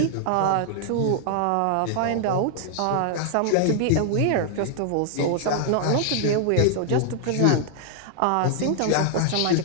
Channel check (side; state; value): both; different; correlation 0.00